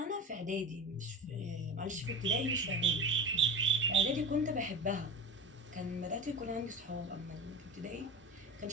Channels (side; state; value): both; normal; correlation 0.30